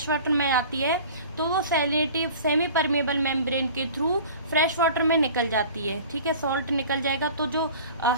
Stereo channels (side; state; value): both; inverted; correlation -0.42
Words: वाटर में आती है तो वो सैलिनिटी सेमी परमेबल मेम्ब्रेन के थ्रू फ्रेश वाटर में निकल जाती है, ठीक है, सॉल्ट निकल जाएगा, तो जो